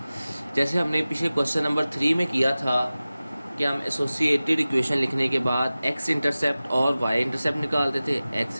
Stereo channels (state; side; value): inverted; both; correlation -0.97